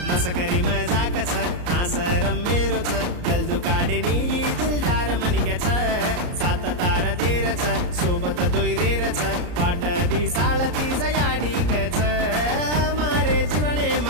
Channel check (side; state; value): left; late; 34 ms